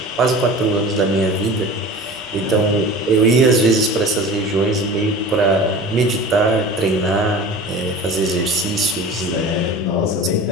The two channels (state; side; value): normal; both; correlation 0.37